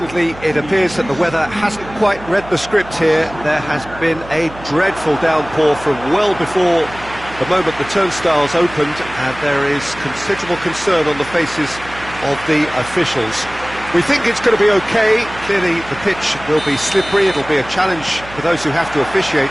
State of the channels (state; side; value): noise; right; hum, 17 dB below the sound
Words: it appears that the weather hasn't quite read the script here. There has been a dreadful downpour from well before the moment the turnstiles opened, and there is considerable concern on the faces of the officials. We think it's going to be okay. Clearly, the pitch will be slippery. It'll be a challenge for those who have to officiate,